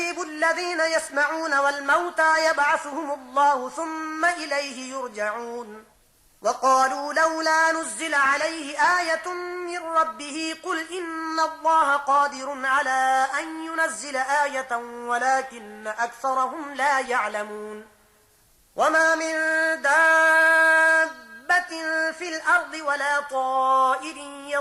الذين يسمعون والموتى يبعثهم الله ثم إليه يرجعون وقالوا لولا نزل عليه آية من ربه قل إن الله قادر على أن ينزل آية ولكن أكثرهم لا يعلمون وما من دابة في الأرض ولا طائر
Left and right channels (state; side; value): identical; both; correlation 1.00